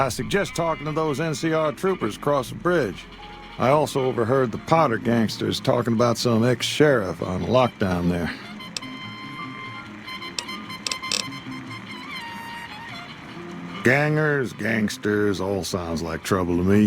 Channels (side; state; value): both; identical; correlation 1.00